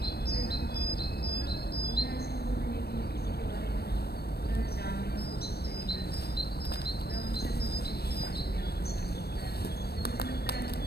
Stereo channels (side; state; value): right; late; 0.47 ms